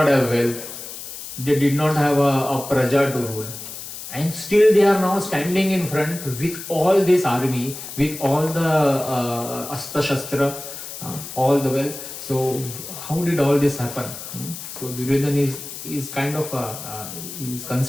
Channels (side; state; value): left; noise; hiss, 10 dB below the sound